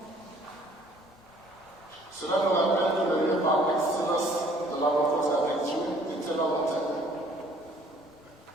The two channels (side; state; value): both; normal; correlation 0.57